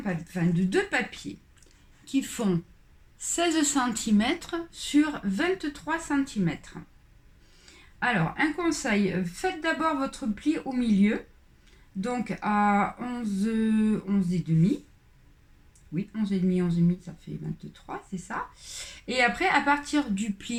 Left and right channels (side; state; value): both; identical; correlation 1.00